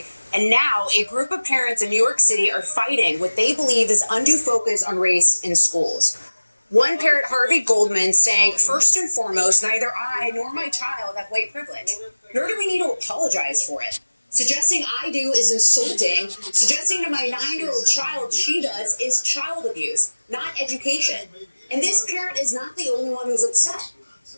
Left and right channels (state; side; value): inverted; both; correlation -1.00